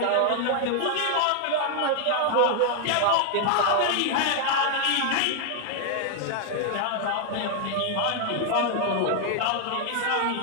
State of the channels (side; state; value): both; different; correlation 0.00